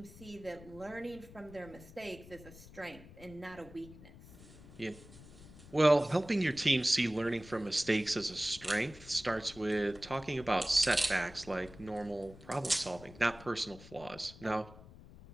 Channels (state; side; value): noise; left; rumble, 19 dB below the sound